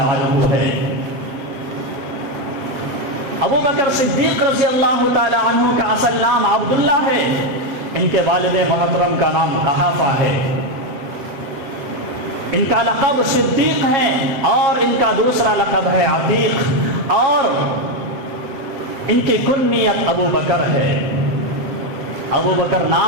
عنہ ہے۔ ابو بکر صدیق رضی اللہ تعالیٰ عنہ کا اصل نام عبداللہ ہے، ان کے والد محترم کا نام قحافہ ہے، ان کا لقب صدیق ہے اور ان کا دوسرا لقب ہے عتیق، اور ان کی کنیت ابو بکر ہے۔ ابو بکر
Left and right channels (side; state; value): left; late; 7.3 ms